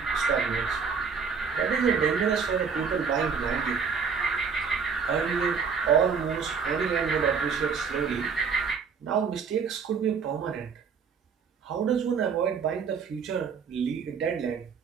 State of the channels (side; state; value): left; quieter; 5.9 dB